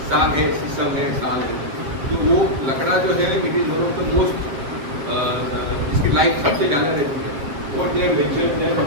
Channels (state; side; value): late; left; 7.4 ms